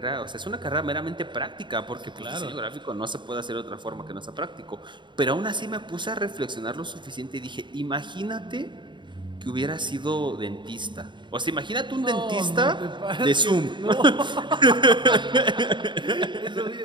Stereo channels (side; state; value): left; late; 0.23 ms